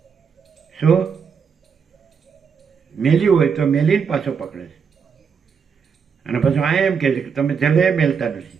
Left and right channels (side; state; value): left; quieter; 6.3 dB